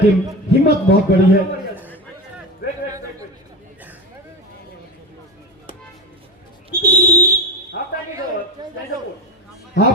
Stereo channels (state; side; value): normal; both; correlation 0.20